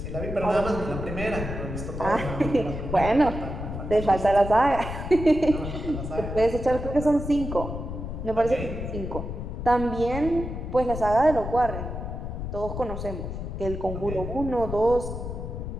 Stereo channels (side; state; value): left; noise; rumble, 6 dB below the sound